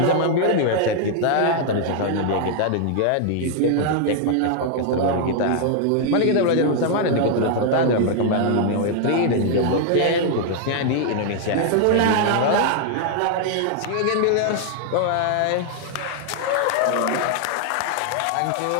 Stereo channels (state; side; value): different; both; correlation 0.00